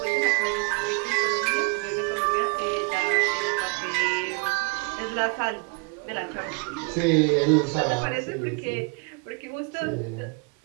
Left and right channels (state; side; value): quieter; left; 31.3 dB